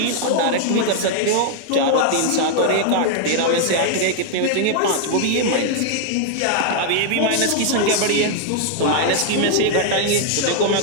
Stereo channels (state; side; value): different; both; correlation 0.00